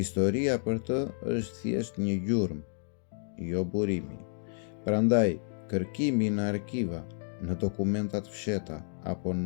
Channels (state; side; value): silent; right; digital silence